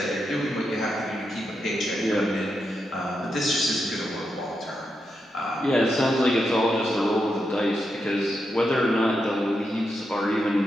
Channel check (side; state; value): both; normal; correlation 0.85